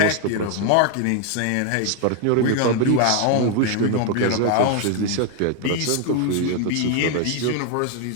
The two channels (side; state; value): both; different; correlation 0.01